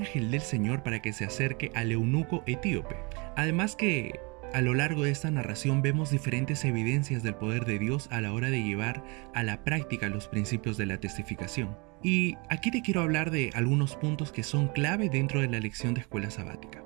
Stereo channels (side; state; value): left; quieter; 29.2 dB